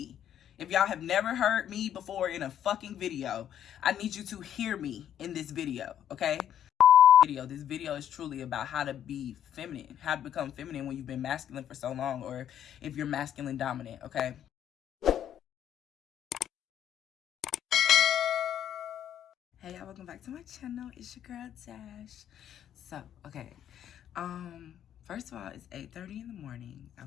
If y'all have never heard me before in a fucking video, I need you to hear me in this video, okay? This video is truly about how to be feminine, how to become feminine when you've been masculine for so long, or if you're masculine dominant, okay? Hey y'all, welcome back to my channel. It's your girl Dash. So, okay. First of all, it's 8:30 in the morning,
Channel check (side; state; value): right; quieter; 10.2 dB